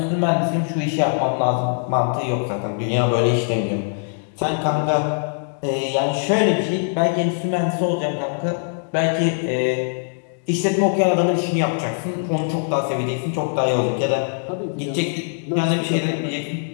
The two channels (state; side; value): silent; right; digital silence